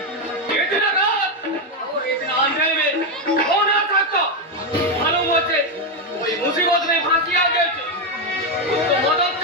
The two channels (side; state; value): both; normal; correlation 0.06